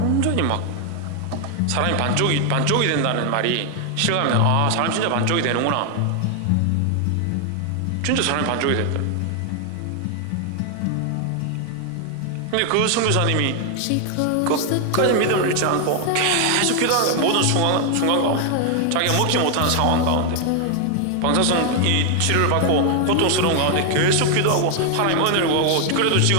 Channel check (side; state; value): both; different; correlation 0.00